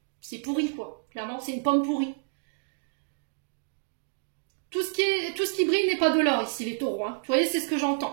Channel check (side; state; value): left; silent; digital silence